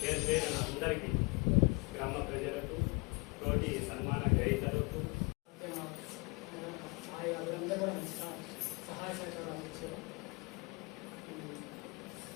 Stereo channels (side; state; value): right; quieter; 28.2 dB